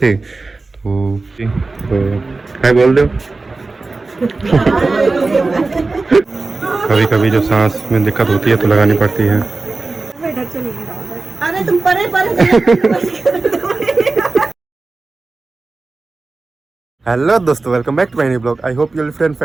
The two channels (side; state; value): left; quieter; 3.6 dB